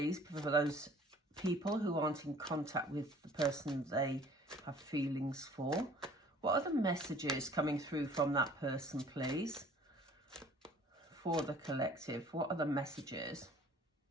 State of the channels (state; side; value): normal; both; correlation 0.52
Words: for those people who aren't in contact with the person they have feelings for. What are the messages coming through from that person, please? For the collective, what are the messages?